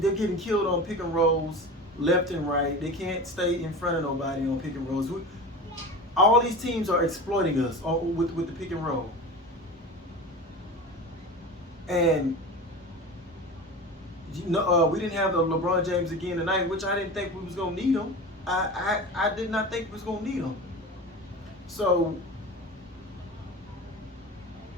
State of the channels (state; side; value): normal; both; correlation 0.31